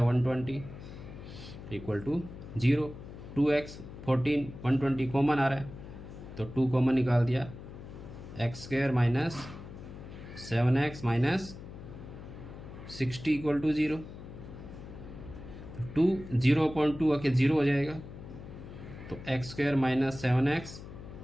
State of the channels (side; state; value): left; noise; hum, 13 dB below the sound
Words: 120 इक्वल टू 0। 2x 14 120 कॉमन आ रहा है तो 2 कॉमन निकाल दिया, x square minus 7x minus 60 equal to 0। 2 0.2 आके 0 हो जाएगा तो x square minus 7x